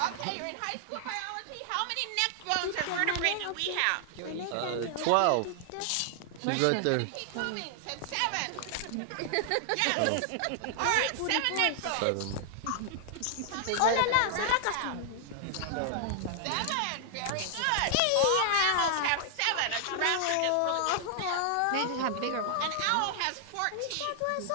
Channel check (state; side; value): different; both; correlation -0.01